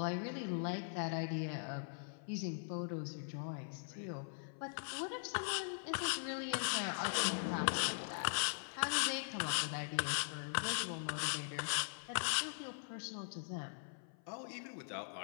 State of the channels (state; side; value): silent; right; 50 dB below the other